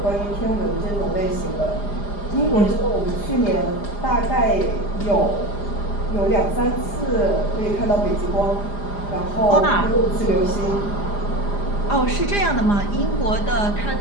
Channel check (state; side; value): late; right; 4.9 ms